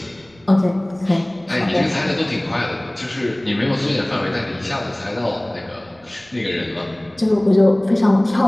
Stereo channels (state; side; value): noise; right; rumble, 29 dB below the sound